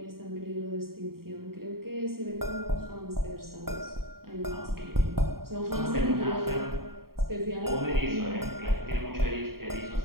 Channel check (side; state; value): left; late; 0.93 ms